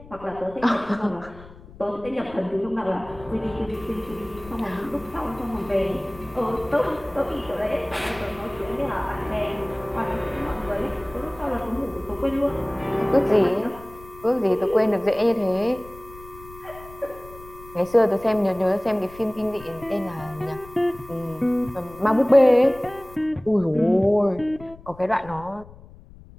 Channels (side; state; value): left; noise; rumble, 20 dB below the sound